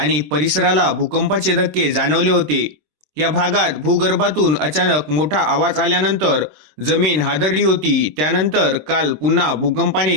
परिसराला भूकंपाचे धक्के जाणवले होते. या भागात भूगर्भातून अचानक मोठा आवाज आल्यानंतर जमीन हादरली होती. त्यानंतर काल पुन्हा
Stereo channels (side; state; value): left; late; 26 ms